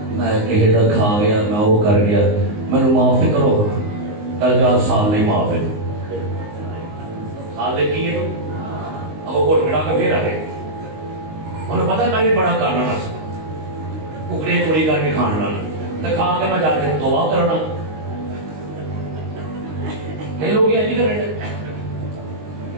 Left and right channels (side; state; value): left; late; 19 ms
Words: मैं किसी का खा गया मैं वो कर गया मैंने माफी करो कल जा साल नहीं माफी साल ले की तो अब वो कोट के फिर आ गए उन्हें पता मैं भी बड़ा करना ना कुकड़े चोरी करके खाना तो खा के मैं जाके तौबा करना कई लोग ये नहीं करेंगे